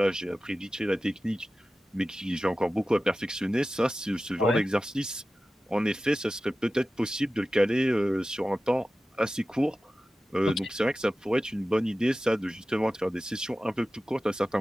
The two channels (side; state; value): both; normal; correlation 0.95